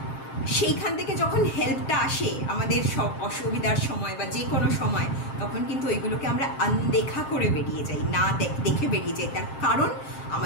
সেইখান থেকে যখন হেল্পটা আসে আমাদের সব অসুবিধার সময় বা যে কোনো সময়, তখন কিন্তু ওইগুলোকে আমরা আনদেখা করে বেরিয়ে যাই, না দেখে বেরিয়ে যাই। তার কারণ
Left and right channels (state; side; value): late; right; 7.5 ms